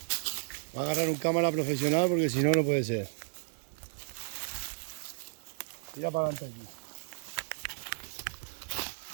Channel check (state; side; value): silent; left; digital silence